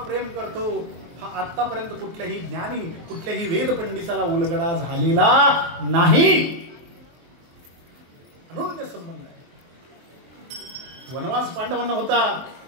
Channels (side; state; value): left; late; 24 ms